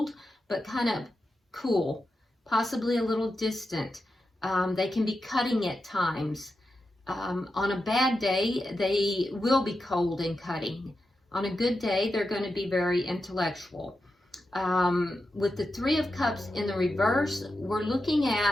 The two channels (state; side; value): normal; both; correlation 0.89